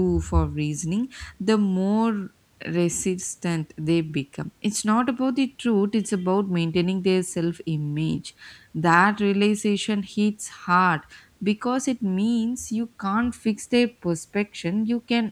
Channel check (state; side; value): identical; both; correlation 1.00